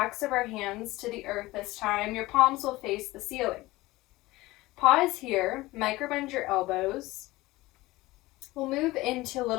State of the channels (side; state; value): right; quieter; 19.3 dB